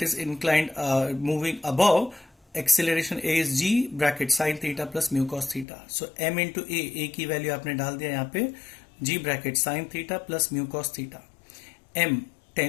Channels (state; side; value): drops out; right; at 5.7 s